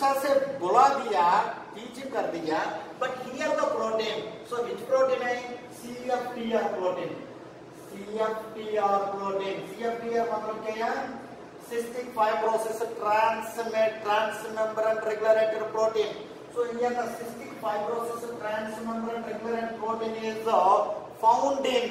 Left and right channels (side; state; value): both; identical; correlation 1.00